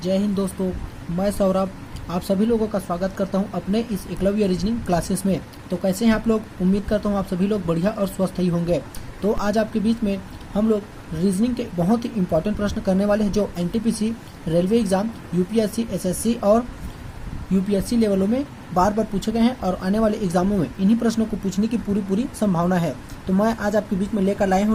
जय हिंद दोस्तों। मैं सौरभ आप सभी लोगों का स्वागत करता हूं अपने इस एकलव्य रीजनिंग क्लासेस में। तो कैसे हैं आप लोग? उम्मीद करता हूं आप सभी लोग बढ़िया और स्वस्थ ही होंगे। तो आज आपके बीच में हम लोग रीजनिंग के बहुत ही इंपॉर्टेंट प्रश्न करने वाले हैं जो NTPC, railway exam, UPSC, SSC और यूपीएससी लेवलों में बार बार पूछे गए हैं और आने वाले एग्जामों में इन्हीं प्रश्नों को पूछने की पूरी संभावना है। तो मैं आज आपके बीच में लेकर लाया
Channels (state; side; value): identical; both; correlation 1.00